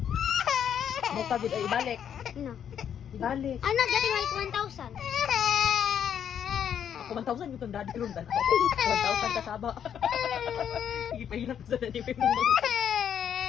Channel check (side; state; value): right; quieter; 8.8 dB